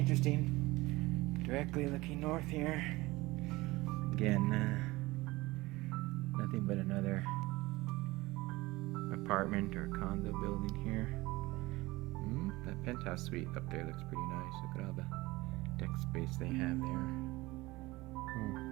Directly looking north here. Again, nothing but another apartment or condo building here. That penthouse suite up there looks pretty nice. Look at all the deck space they have there.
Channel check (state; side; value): quieter; left; 20.5 dB